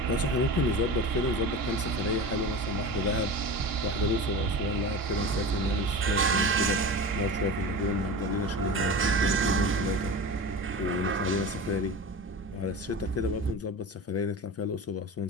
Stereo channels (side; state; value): both; normal; correlation 0.30